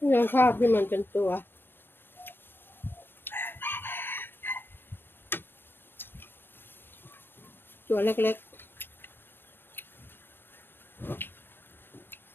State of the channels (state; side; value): late; right; 0.10 ms